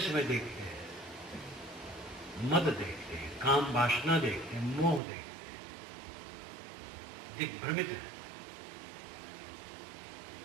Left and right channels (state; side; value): drops out; left; at 5.0 s